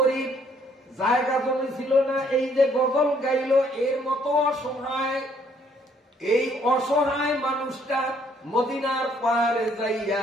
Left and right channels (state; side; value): normal; both; correlation 0.65